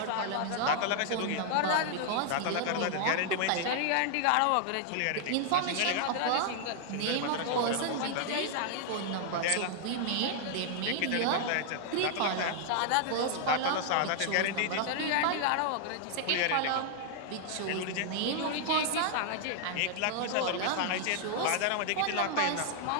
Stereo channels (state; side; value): different; both; correlation 0.00